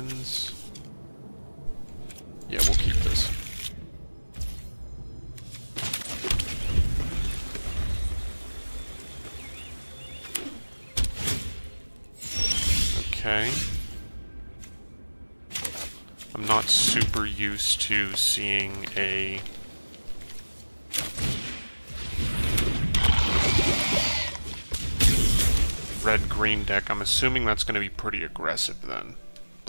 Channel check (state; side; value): inverted; both; correlation -1.00